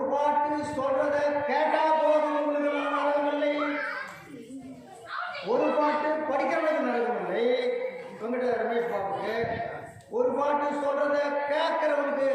பாட்டு சொல்றதை கேட்டா போதும் உங்களுக்கு நரகமில்லை. ஒரு பாட்டு படிக்கிறவனுக்கு நரகமில்லை. உங்ககிட்ட ரமேஷ் பாபுக்கு ஒரு பாட்டு சொல்றதை கேட்கிறவனுக்கு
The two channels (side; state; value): both; identical; correlation 1.00